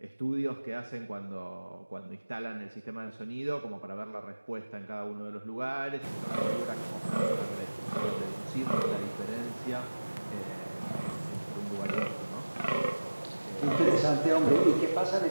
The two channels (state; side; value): inverted; both; correlation -1.00